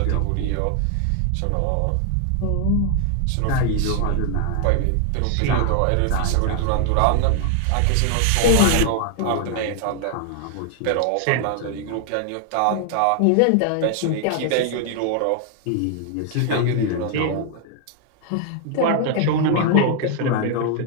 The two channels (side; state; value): both; different; correlation 0.00